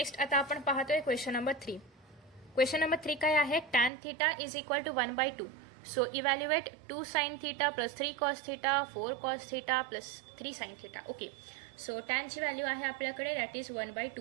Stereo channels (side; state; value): left; drops out; at 3.9 s